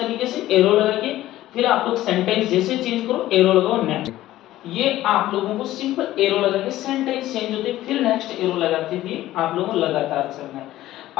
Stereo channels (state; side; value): quieter; right; 14.9 dB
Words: से एरो लगा के, फिर आप लोग सेंटेंस जैसे चेंज करो एरो लगाओ नेक्स्ट। ये आप लोगों को सिंपल एरो लगा के सेंटेंस चेंज होते फिर नेक्स्ट एरो लगाते हुए आप लोगों को लगातार चलना है।